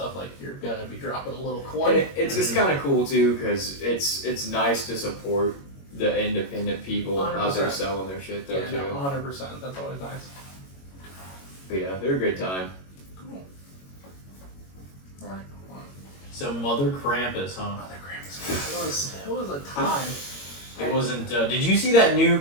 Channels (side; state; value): right; late; 21 ms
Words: like you're gonna be dropping a little And coin. it's just kind of cool too, because it's nice to support the independent people out there 100%. selling their shit though Yeah, too. no, 100%. That's always nice. But yeah, they're a good time. Cool. Alright. So Mother Krampus, huh? Mother Krampus. It was a time. It wasn't. Did you see